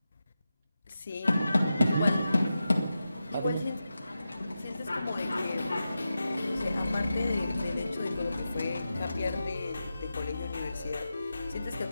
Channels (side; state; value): both; inverted; correlation -0.91